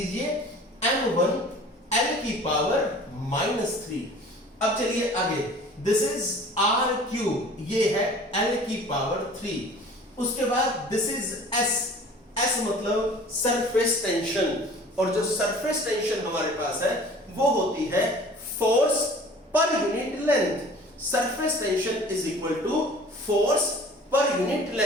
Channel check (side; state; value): both; normal; correlation 0.46